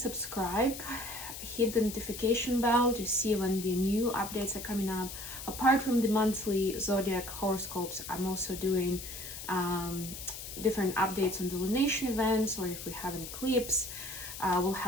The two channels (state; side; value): noise; left; hiss, 10 dB below the sound